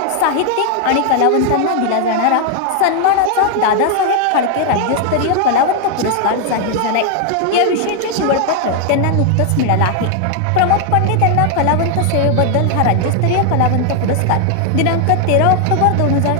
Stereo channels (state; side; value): different; both; correlation 0.00